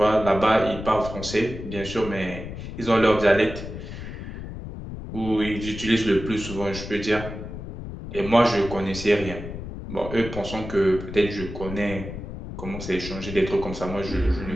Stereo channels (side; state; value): left; noise; rumble, 9 dB below the sound